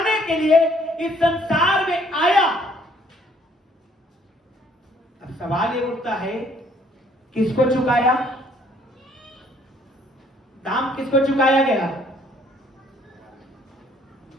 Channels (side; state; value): both; normal; correlation 0.62